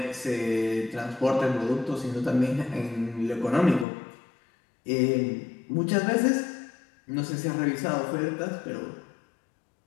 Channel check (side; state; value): right; drops out; at 3.9 s